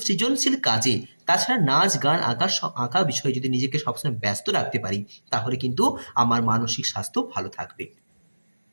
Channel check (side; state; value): both; inverted; correlation -1.00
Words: কাজে, তাছাড়া নাচ গান আঁকা বিষয়ে যদি নিজেকে সবসময় ব্যস্ত রাখতে পারি, তাহলে কিন্তু আমার মানসিক স্বাস্থ্য ভালো থাকবে।